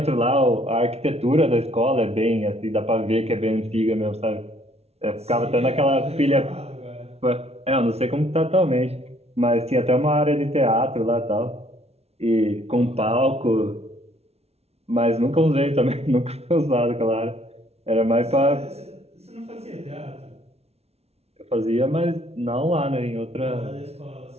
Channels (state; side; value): late; left; 0.30 ms